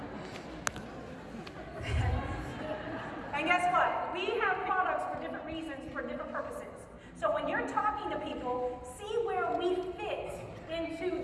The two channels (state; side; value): identical; both; correlation 1.00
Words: And guess what? We have products for different reasons, for different purposes. So when you're talking to people, see where we fit